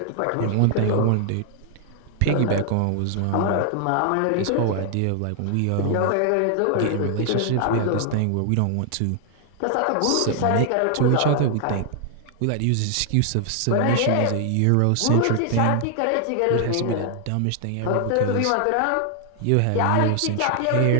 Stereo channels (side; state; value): both; different; correlation 0.00